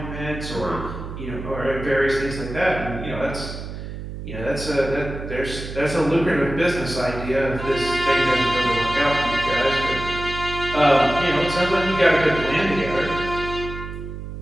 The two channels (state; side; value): noise; right; hum, 9 dB below the sound